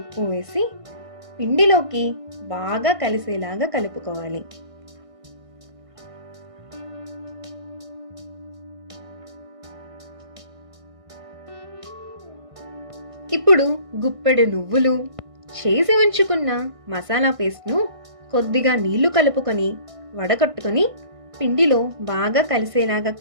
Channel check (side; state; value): left; late; 1.5 ms